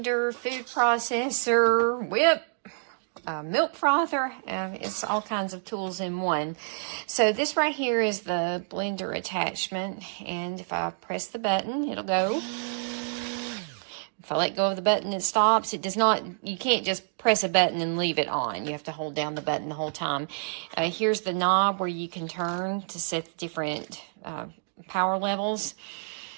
food processor, whip, milk frother. It's all kinds of tools in one. So this right here is the blender attachment, and if I press the button, it'll go. If I let go of the button, it stops. It does not, you can't just press a button and leave it on. You have to hold down the button the whole time. Here's the knob where you can turn to set the different power levels.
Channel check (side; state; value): left; silent; digital silence